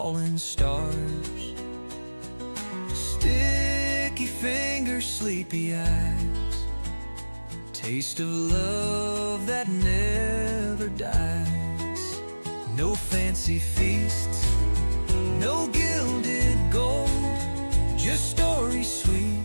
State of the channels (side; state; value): both; inverted; correlation -1.00